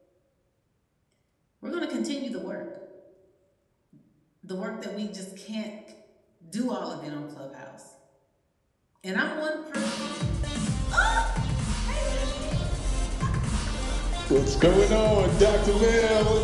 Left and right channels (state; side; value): identical; both; correlation 1.00